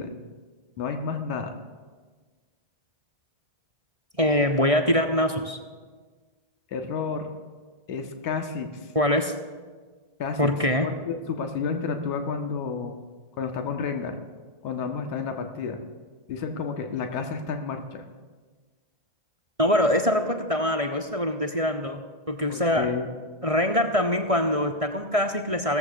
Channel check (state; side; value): late; left; 1.6 ms